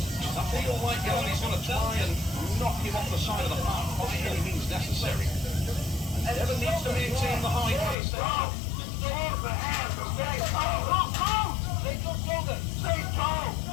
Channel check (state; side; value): drops out; right; at 8.0 s